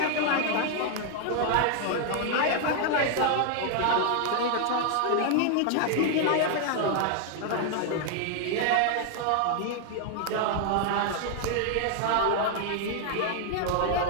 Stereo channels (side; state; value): both; different; correlation 0.00